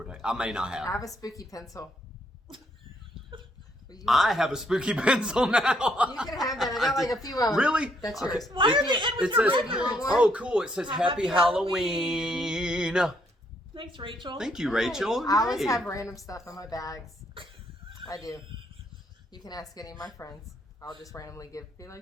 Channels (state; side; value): normal; both; correlation 0.72